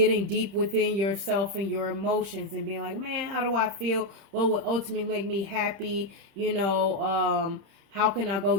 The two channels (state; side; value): late; left; 30 ms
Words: deep within yourself and your emotions and being like, man, how do I feel? What would ultimately make me happy? How can I go